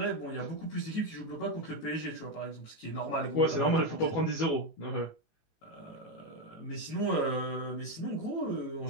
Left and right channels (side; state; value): right; late; 19 ms